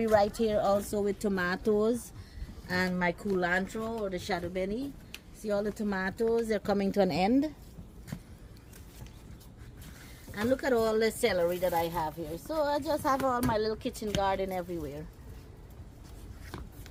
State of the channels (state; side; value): identical; both; correlation 1.00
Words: right here also with tomatoes and my culantro or the shadow benny. See all the tomatoes, they're coming to an end. And look at all the celery that I have here. So I just have all my little kitchen garden everywhere.